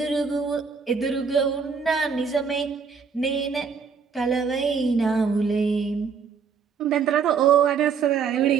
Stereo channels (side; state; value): left; quieter; 5.9 dB